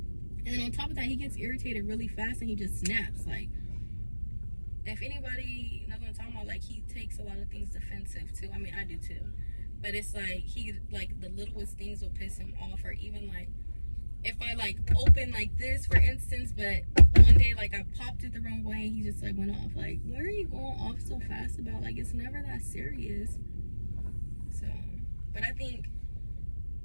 then on top of that, he gets irritated really fast and he just snaps. Like, if anybody knows what I'm talking about, like, he takes a lot of things defensive too. I mean, I do too. But it's like, the littlest things will piss him off. Or even, like, if I like open like this, for instance, but one day like I popped it the wrong way and he just like went off. Like, what are you going off so fast about? Like, it's never that serious. So, but I think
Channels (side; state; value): both; inverted; correlation -1.00